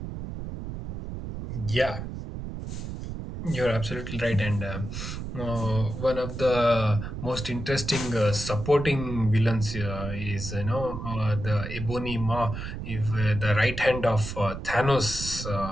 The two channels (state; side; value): noise; right; rumble, 7 dB below the sound